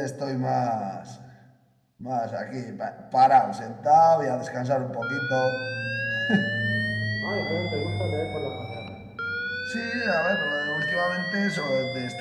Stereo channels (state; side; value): identical; both; correlation 1.00